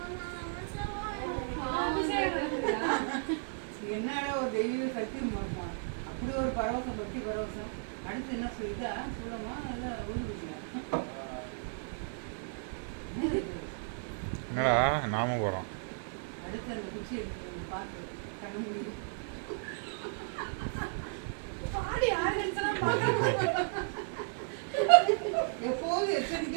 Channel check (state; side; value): silent; left; digital silence